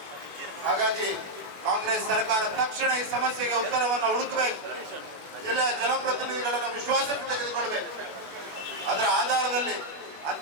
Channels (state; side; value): late; left; 21 ms